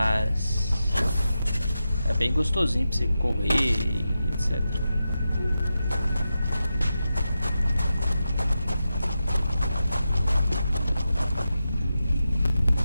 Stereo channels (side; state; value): both; inverted; correlation -0.90